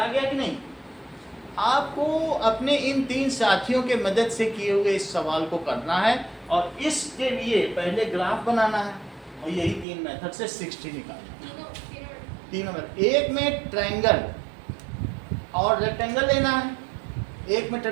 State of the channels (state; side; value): drops out; left; at 9.9 s